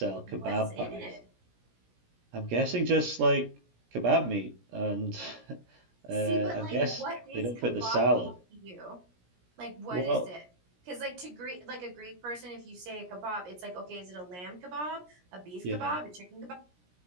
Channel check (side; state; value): left; late; 17 ms